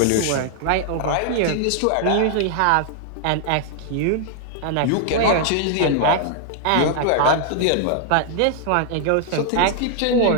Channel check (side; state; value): both; different; correlation -0.01